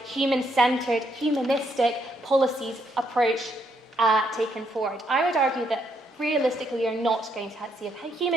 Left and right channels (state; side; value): normal; both; correlation 0.74